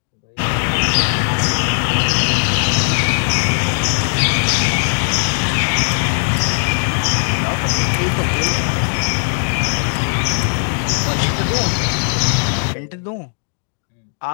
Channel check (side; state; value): right; silent; digital silence